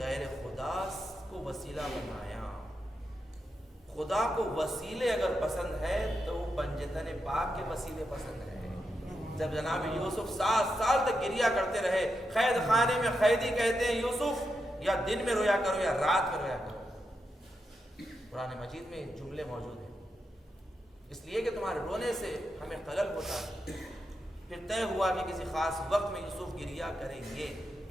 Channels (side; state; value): both; normal; correlation 0.86